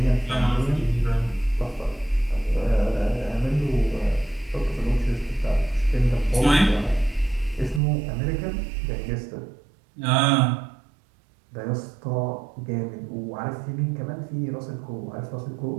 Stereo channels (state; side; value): drops out; left; at 7.8 s